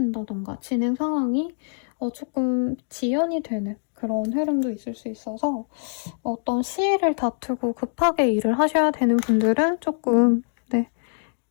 진행 상황이 조금 지연이 되는 그런 흐름도 있을 수 있어서 어떤 시일을 다투고 급하게 일을 하셔야 되는 분들은 조금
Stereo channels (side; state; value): right; silent; digital silence